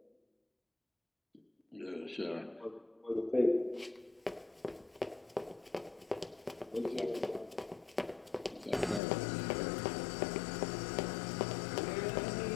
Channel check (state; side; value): drops out; right; at 9.0 s